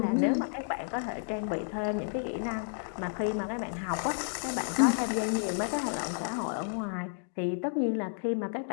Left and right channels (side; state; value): right; silent; digital silence